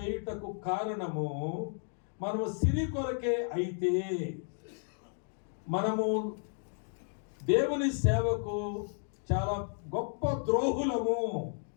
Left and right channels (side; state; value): right; silent; 56 dB below the other